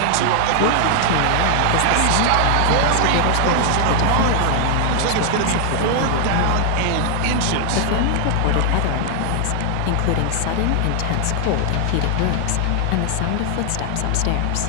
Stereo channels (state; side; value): different; both; correlation 0.00